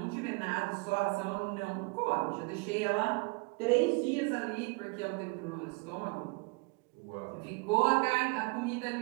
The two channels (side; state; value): left; quieter; 29.3 dB